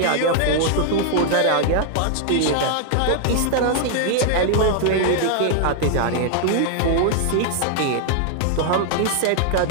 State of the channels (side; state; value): both; different; correlation 0.00